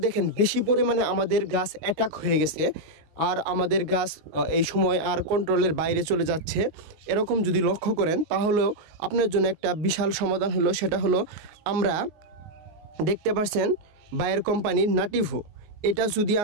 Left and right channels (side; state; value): left; late; 19 ms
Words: দেখেন বেশি পরিমাণে আমাদের গাছ অ্যাটাক হয়ে গেছে আর আমাদের গাছ এই সময় আর কন্ট্রোলের বাইরে চলে যাচ্ছে, এরকম যদি লক্ষ্য করেন তাহলেও আপনার জন্য একটা বিশাল সমাধান হলো। সেটা হলো আমরা দেখতে পাচ্ছেন বায়ার কোম্পানির নাটিভো, এটা যদি